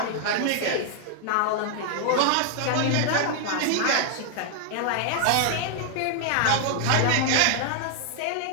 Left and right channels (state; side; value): different; both; correlation 0.00